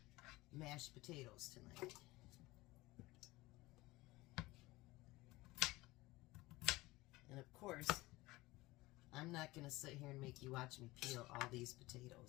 mashed potatoes tonight. And of course, I'm not going to sit here and make you watch me peel all these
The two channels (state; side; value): quieter; right; 20.1 dB